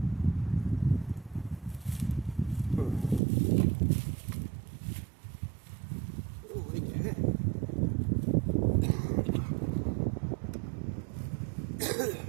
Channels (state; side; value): drops out; left; at 3.2 s